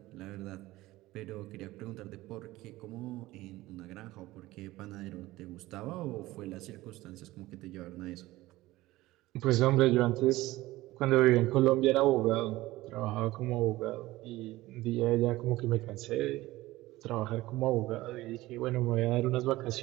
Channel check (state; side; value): quieter; left; 17.9 dB